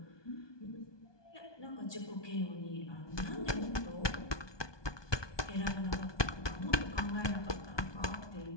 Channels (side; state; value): right; late; 1.2 ms